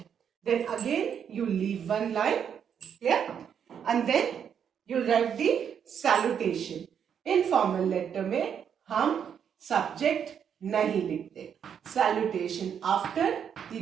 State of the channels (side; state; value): left; quieter; 8.0 dB